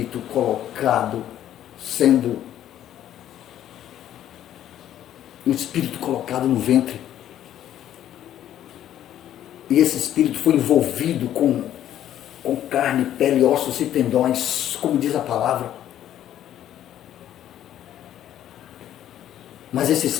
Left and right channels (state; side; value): quieter; right; 11.5 dB